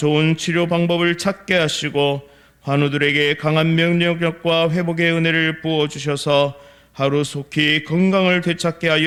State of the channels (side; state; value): both; identical; correlation 1.00